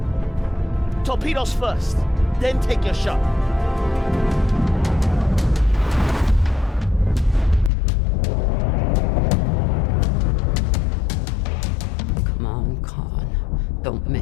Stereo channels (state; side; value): drops out; right; at 7.7 s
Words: Torpedoes first, then take your shot. Come on, Khan. Don't